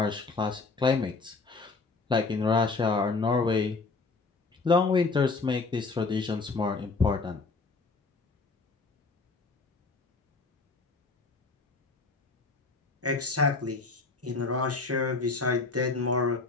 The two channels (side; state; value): right; quieter; 4.0 dB